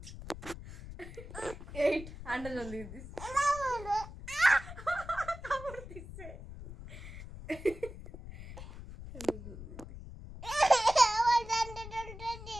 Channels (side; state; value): left; noise; rumble, 12 dB below the sound